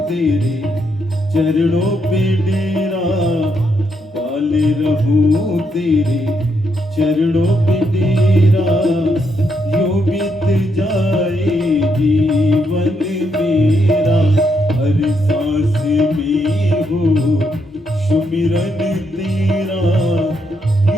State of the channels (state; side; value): normal; both; correlation 0.78